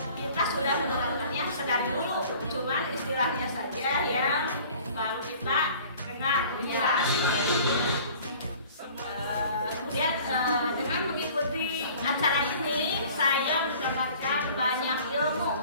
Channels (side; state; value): both; inverted; correlation -0.48